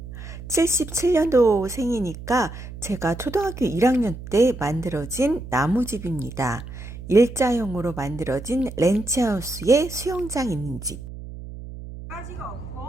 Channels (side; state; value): right; noise; hum, 12 dB below the sound